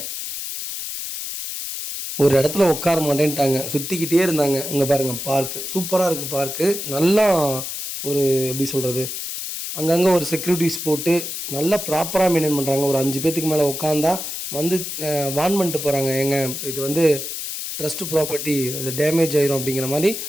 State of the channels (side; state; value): left; noise; hiss, 6 dB below the sound